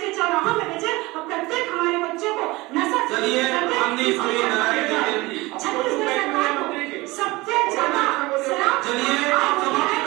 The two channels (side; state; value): left; quieter; 21.7 dB